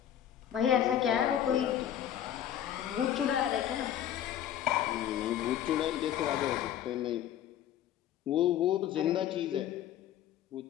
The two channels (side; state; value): right; quieter; 10.7 dB